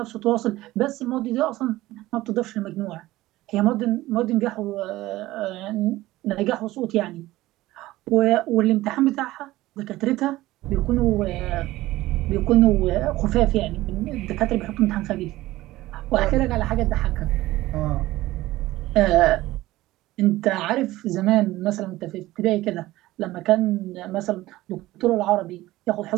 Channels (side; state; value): left; quieter; 17.2 dB